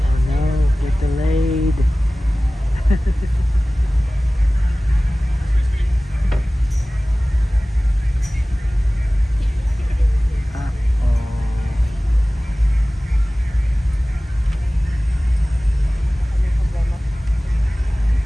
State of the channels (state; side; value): normal; both; correlation 0.98